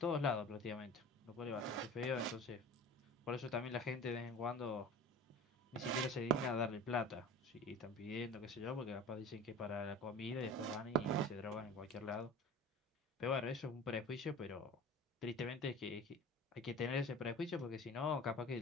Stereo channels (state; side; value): normal; both; correlation 0.38